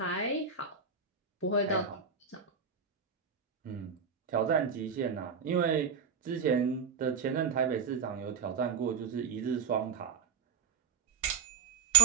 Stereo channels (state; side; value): quieter; left; 6.2 dB